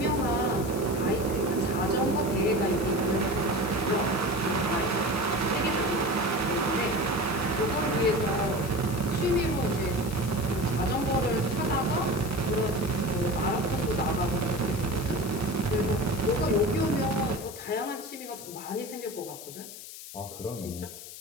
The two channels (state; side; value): noise; left; hiss, 13 dB below the sound